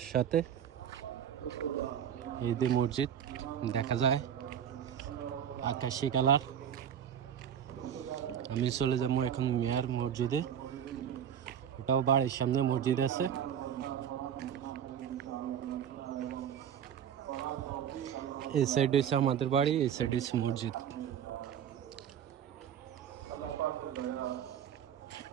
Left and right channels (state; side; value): quieter; left; 9.0 dB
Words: সাথে, এই যে মসজিদ দেখা যায় আকাশি কালার। আমি চলে যাবো এখন মেয়র মসজিদে, এটাও বাড়ির সামনে মসজিদ আছে। এই সাইড হচ্ছে আমাদের বাড়ি, এই সাইড হচ্ছে মসজিদ।